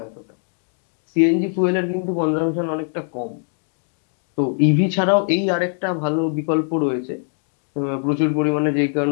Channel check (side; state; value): right; silent; 58 dB below the other